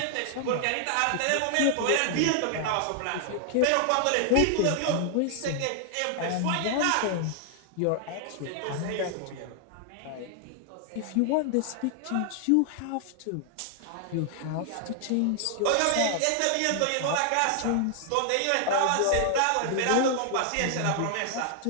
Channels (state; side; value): different; both; correlation 0.00